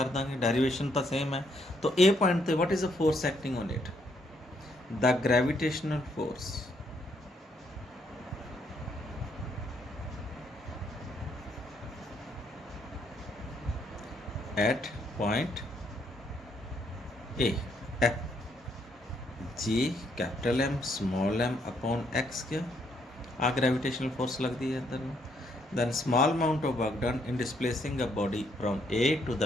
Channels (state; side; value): normal; both; correlation 0.72